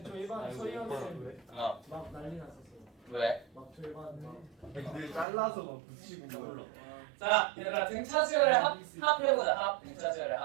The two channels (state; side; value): drops out; left; at 5.2 s